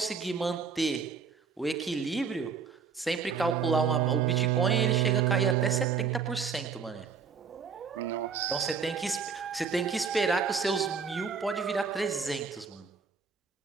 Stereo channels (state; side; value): quieter; left; 5.7 dB